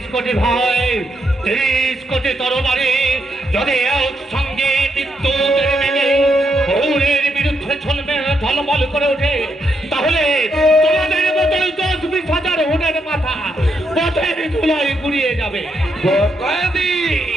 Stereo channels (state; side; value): normal; both; correlation 0.79